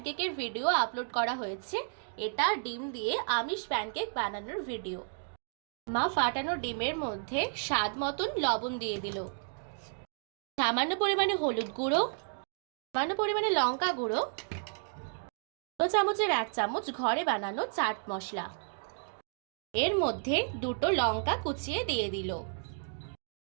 ভিডিও আপলোড করা হয়েছে। এটা ডিম দিয়ে আমিষ প্যানকেক বানানোর ভিডিও। মা ফাটানো ডিমের মধ্যে স্বাদ মতন লবণ দিয়ে দিল, সামান্য পরিমাণে হলুদ গুঁড়ো, সামান্য পরিমাণে লঙ্কা গুঁড়ো, 2 চামচের 1 চামচ ঘরে বানানো চাট মশলা, এর মধ্যে দুটো লঙ্কা কুচিয়ে দিয়ে দিল।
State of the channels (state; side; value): silent; left; digital silence